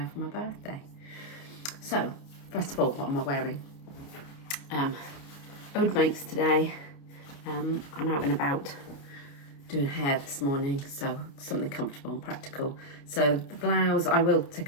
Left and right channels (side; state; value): right; late; 29 ms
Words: for my birthday. So first of all, what am I wearing? Ode makes today. I'm out and about doing hair this morning, so something comfortable and practical. So the blouse, I will